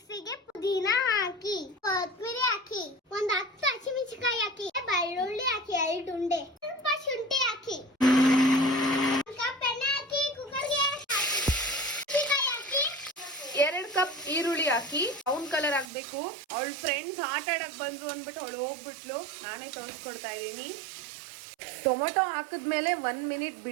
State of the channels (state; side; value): drops out; left; at 15.9 s